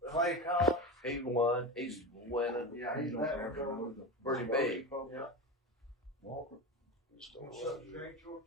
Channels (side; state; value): both; normal; correlation 0.22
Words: Clay Collins. He won. He's winning. Yeah, he's Pretty big. Yeah.